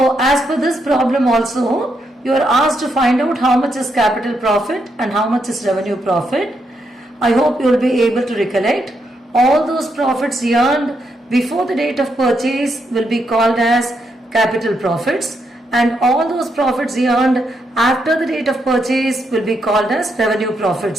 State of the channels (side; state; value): both; normal; correlation 0.80